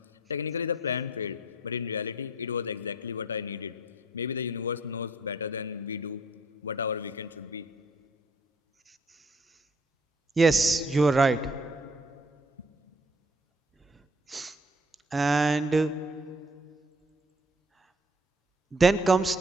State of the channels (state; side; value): normal; both; correlation 0.60